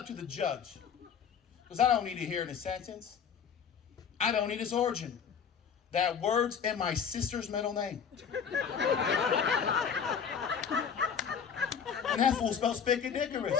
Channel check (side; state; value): right; quieter; 7.1 dB